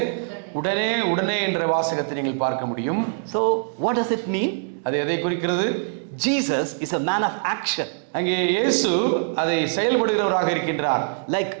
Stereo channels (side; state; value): left; silent; digital silence